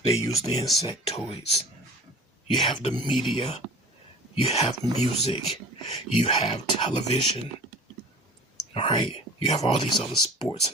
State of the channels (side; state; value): both; normal; correlation 0.42